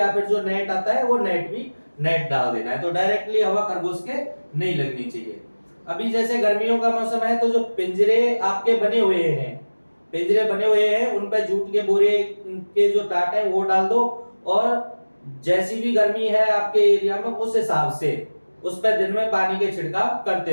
फिर जो नेट आता है वो नेट भी नेट डाल देना है, तो डायरेक्टली हवा खरगोश के नहीं लगनी चाहिए। अभी जैसे गर्मियों का मौसम है तो जो पिंजरे आपके बने हुए हैं, पिंजरे बने हुए हैं उन पर जूट के बोरे के जो टाट है वो डाल दो, और जैसी भी गर्मी है आपके एरिया में उस हिसाब से उस पर दिन में पानी के छिड़काव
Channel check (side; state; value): both; inverted; correlation -1.00